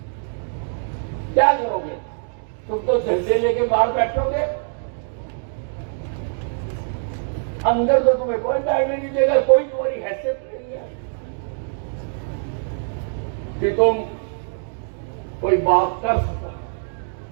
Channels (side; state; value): left; silent; digital silence